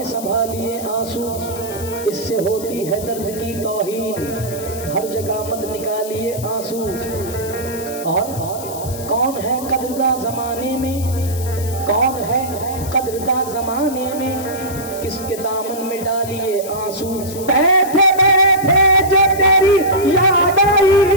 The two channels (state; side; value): noise; left; hiss, 13 dB below the sound